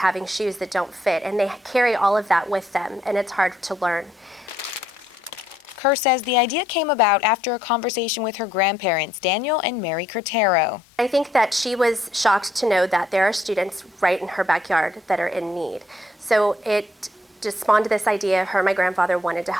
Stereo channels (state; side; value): normal; both; correlation 0.71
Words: shoes that don't fit, and they carry all of that with them, and it's hard to learn. Kerr says the idea came about after a conversation with her grandparents, Daniel and Mary Curtero. I think that she was shocked to know that there are students right in her backyard that are in need. So it just spawned this idea. Her and my grandfather wanted to